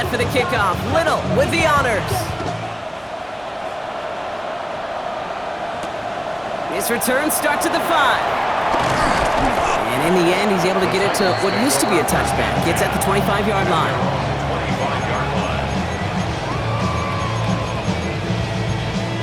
for the kickoff. Little with the honors. His return starts at the 5. And in the end, he's able to get it to what used to be a touchback. Gets at the 25-yard line. 25-yard line.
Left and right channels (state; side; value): identical; both; correlation 1.00